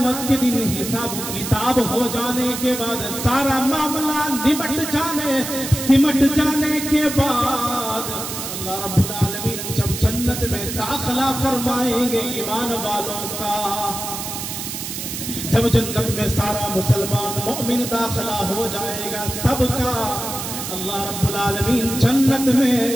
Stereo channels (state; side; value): noise; right; hiss, 6 dB below the sound